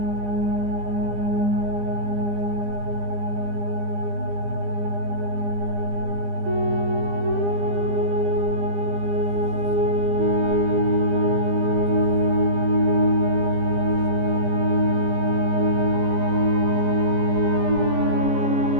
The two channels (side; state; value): left; late; 15 ms